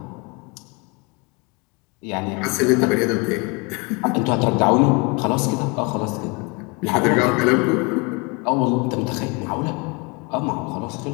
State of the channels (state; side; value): quieter; right; 29.5 dB